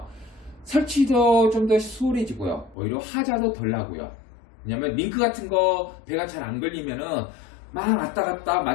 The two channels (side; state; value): right; drops out; at 2.8 s